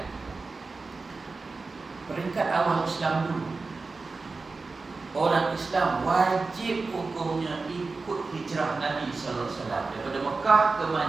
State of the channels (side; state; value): left; quieter; 3.9 dB